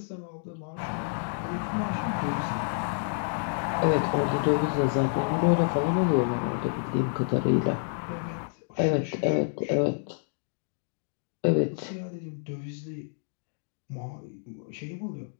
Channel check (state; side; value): silent; right; digital silence